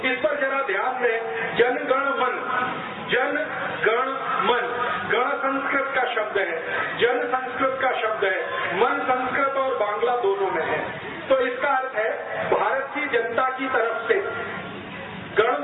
इस पर जरा ध्यान दें। जनगण मन, जन गण मन, गण संस्कृत का शब्द है, जन संस्कृत का शब्द है, मन संस्कृत और बांग्ला दोनों में है। तो इसका अर्थ है भारत की जनता की तरफ से, गण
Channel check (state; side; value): identical; both; correlation 1.00